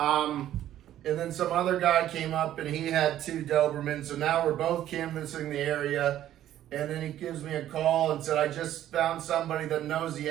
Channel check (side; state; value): left; quieter; 12.2 dB